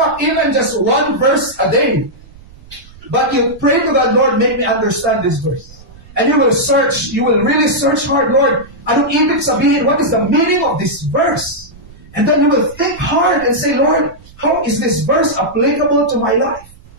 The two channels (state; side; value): noise; right; rumble, 22 dB below the sound